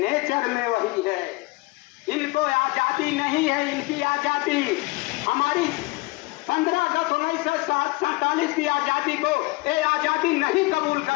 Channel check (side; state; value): right; quieter; 23.5 dB